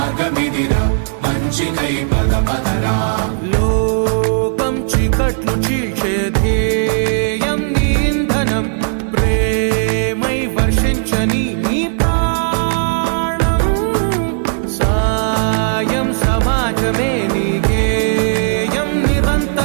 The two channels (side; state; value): left; silent; digital silence